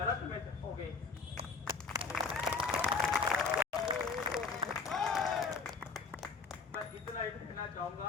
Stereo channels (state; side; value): quieter; right; 4.7 dB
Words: में जाओगे। मैं इतना ही कहना